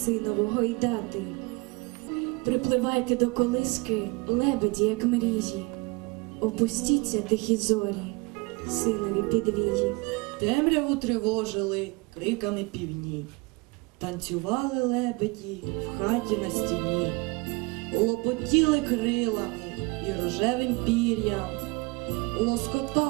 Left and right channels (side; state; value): left; quieter; 26.4 dB